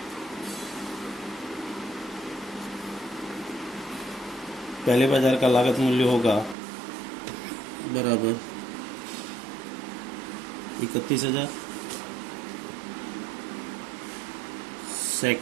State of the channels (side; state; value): left; drops out; at 6.6 s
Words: पहले बाजार का लागत मूल्य होगा बराबर 31,000।